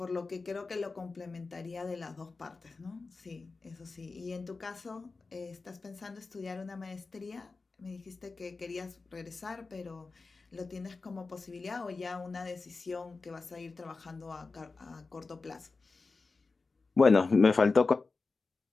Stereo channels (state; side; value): quieter; right; 4.0 dB